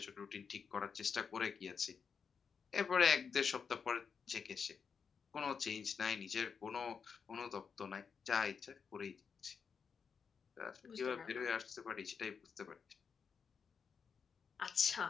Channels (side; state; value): right; quieter; 6.1 dB